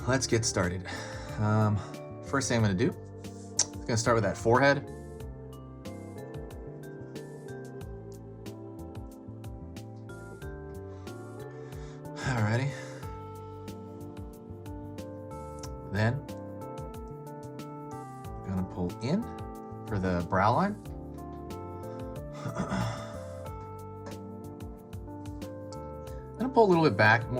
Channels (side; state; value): both; identical; correlation 1.00